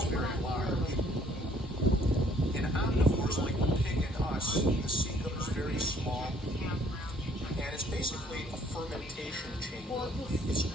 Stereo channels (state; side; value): normal; both; correlation 0.62